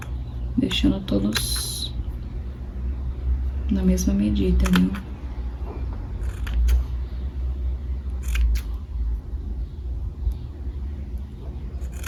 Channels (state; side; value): identical; both; correlation 1.00